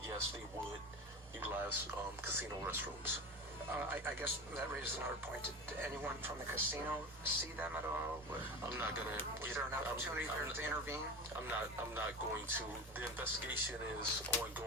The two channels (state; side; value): normal; both; correlation 0.29